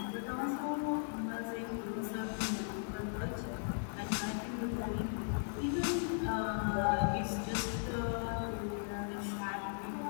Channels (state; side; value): silent; right; 53 dB below the other